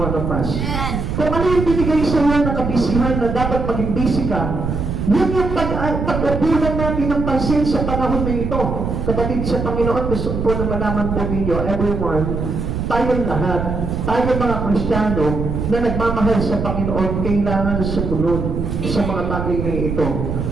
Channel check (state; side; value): noise; right; rumble, 3 dB below the sound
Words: of us. Kung ano yung binigay sa iyo na kabisihan na dapat maging busy ka, Yun yung pag-upunan natin ng pansin sa panahon na ito. Kapatid sa Panginoon, gusto po na malaman po ninyo, everyone, tayong lahat, tayong mga Kristiyano na nagmamahal sa Panginoon, kailangan sumunod sa mga bagay na ito.